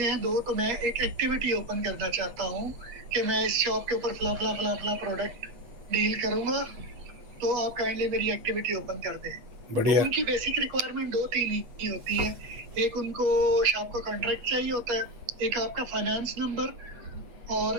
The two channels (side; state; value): left; late; 8.2 ms